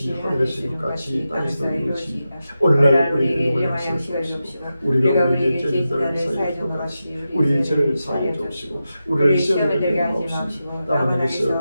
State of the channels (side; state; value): both; inverted; correlation -0.91